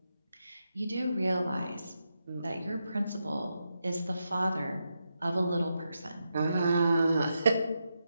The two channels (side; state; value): both; inverted; correlation -0.86